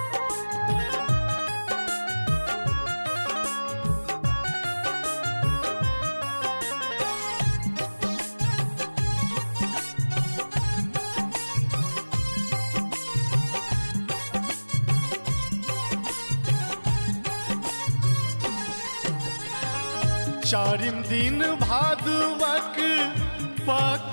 चारिम दिन भादवक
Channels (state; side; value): inverted; both; correlation -1.00